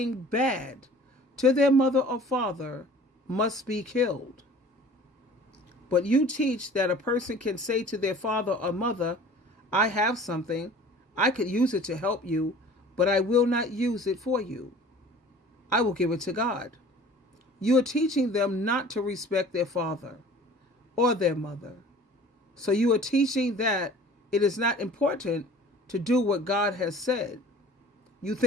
bad to their mother or father must be killed. But you teach that a person can say to their father or mother, I have something, I could use it to help you, but I will not use it for you. I will give it to God. You are teaching them not to respect their father or their mother. So you are teaching that it is not important to do what God has said. You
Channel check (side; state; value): both; normal; correlation 0.46